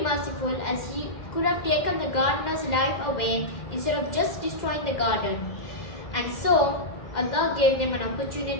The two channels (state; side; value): late; right; 2.0 ms